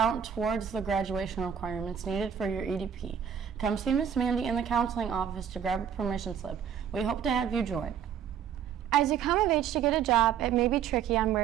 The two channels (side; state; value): left; quieter; 8.4 dB